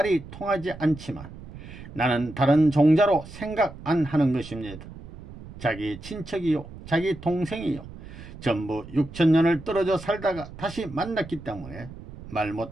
통하지 않지만 나는 다른 종자로 생각 안 하는 것입니다. 자기 친척이요, 자기 동생이요, 전부 6000년을 떨어져 살다가 다시 만났기 때문에 말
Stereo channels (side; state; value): right; noise; rumble, 15 dB below the sound